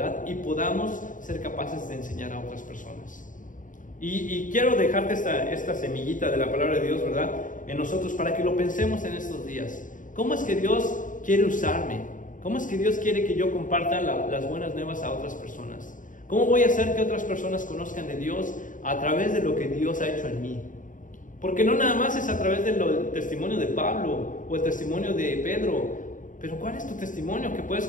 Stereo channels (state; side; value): late; right; 0.38 ms